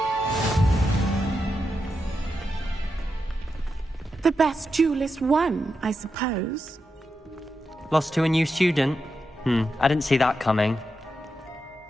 The best duelist won, I suppose. Lost to a new student? I didn't see that coming.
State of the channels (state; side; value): normal; both; correlation 0.87